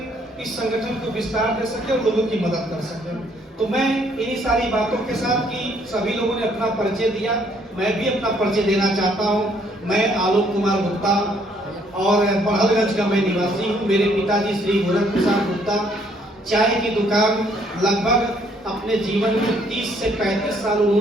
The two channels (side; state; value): both; normal; correlation 0.66